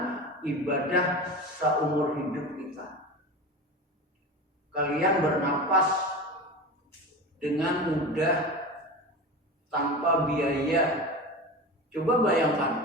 ibadah seumur hidup kita. Kalian bernapas dengan mudah tanpa biaya. Coba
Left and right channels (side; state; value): both; normal; correlation 0.28